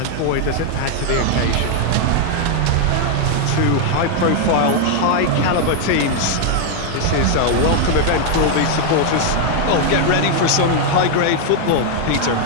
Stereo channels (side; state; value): both; different; correlation 0.00